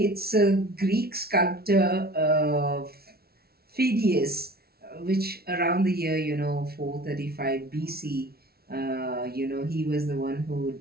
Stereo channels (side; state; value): left; late; 0.45 ms